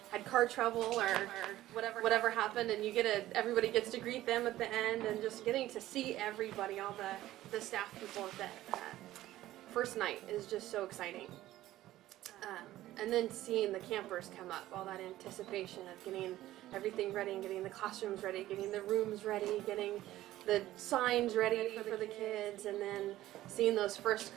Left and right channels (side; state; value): left; quieter; 14.9 dB